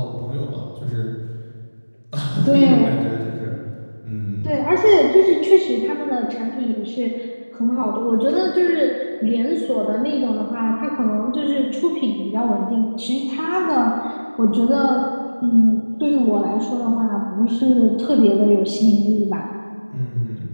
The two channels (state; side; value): inverted; both; correlation -1.00